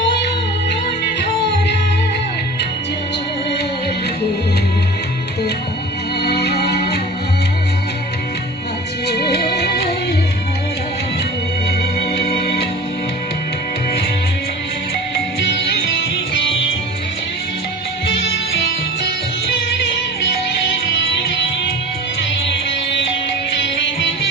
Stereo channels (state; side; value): normal; both; correlation 0.38